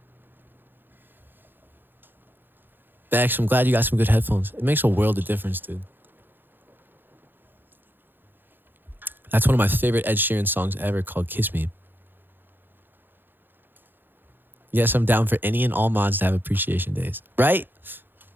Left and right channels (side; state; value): left; late; 0.096 ms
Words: Bex, I'm glad you got some good headphones. It makes a world of difference, dude. That's one of my favorite Ed Sheeran songs ever, called Kiss Me. Yes, I'm down for any and all mods to have appreciation days. Right?